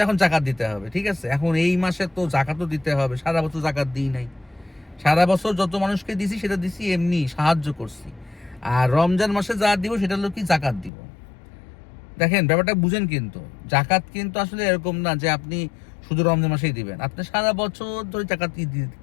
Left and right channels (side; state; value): right; drops out; at 10.9 s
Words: এখন জাকাত দিতে হবে, ঠিক আছে। এখন এই মাসে তো জাকাতও দিতে হবে, সারা বছর জাকাত দিই নাই। সারা বছর যত মানুষকে দিছি সেটা দিছি এমনি সাহায্য করছি। আর রমজান মাসে যা দিব সেটা হলো কি জাকাত দিব। দেখেন ব্যাপারটা বুঝেন, কিন্তু জাকাত কিন্তু আসলে এরকম না যে আপনি শুধু রমজান মাসেই দিবেন। আপনি সারা বছর ধরে জাকাত